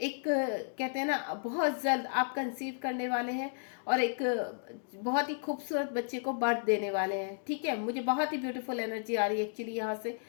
कहते हैं ना, बहुत जल्द आप कंसीव करने वाले हैं और एक बहुत ही खूबसूरत बच्चे को बर्थ देने वाले हैं। ठीक है, मुझे बहुत ही ब्यूटीफुल एनर्जी आ रही है एक्चुअली यहाँ से।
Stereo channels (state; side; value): silent; right; digital silence